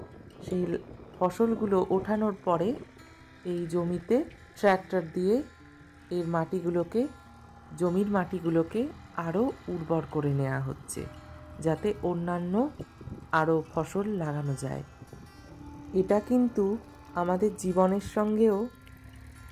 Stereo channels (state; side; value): identical; both; correlation 1.00